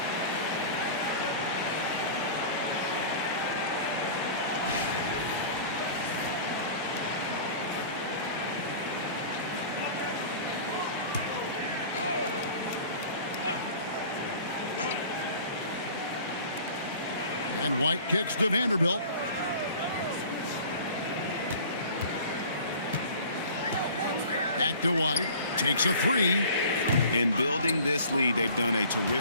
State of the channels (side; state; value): both; inverted; correlation -0.43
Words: And White kicks to Vanderbilt. Back to White. Takes a 3. In building this lead, they've done a